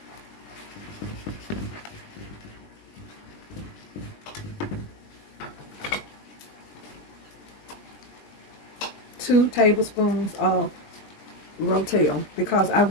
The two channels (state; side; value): late; right; 20 ms